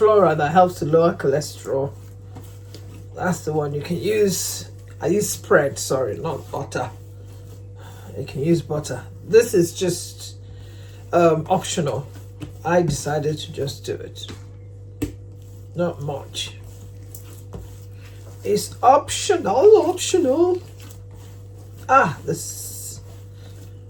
that helps to lower cholesterol. That's the one you can use. I use spread, sorry, not butter. You can use butter. This is just optional. I decided to just do it. Not much. It's optional.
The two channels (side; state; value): both; identical; correlation 1.00